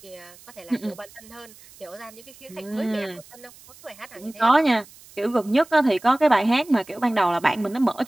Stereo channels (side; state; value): right; noise; hiss, 23 dB below the sound